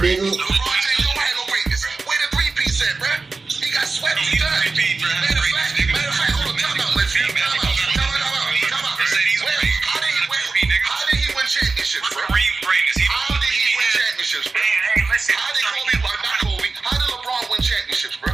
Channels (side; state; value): left; quieter; 4.0 dB